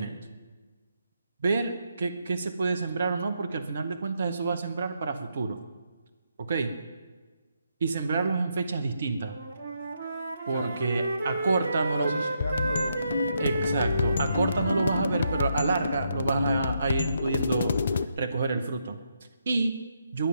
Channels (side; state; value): both; inverted; correlation -0.79